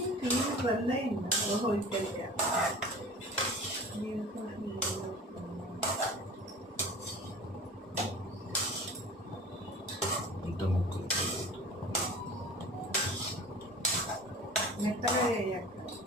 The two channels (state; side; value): normal; both; correlation 0.40